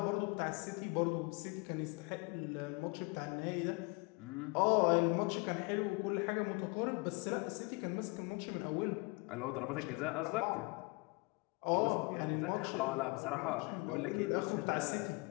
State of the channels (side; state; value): right; quieter; 27.8 dB